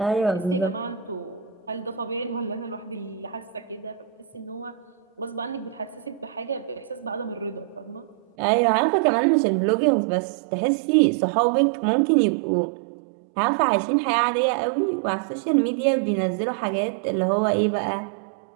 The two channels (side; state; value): left; drops out; at 8.2 s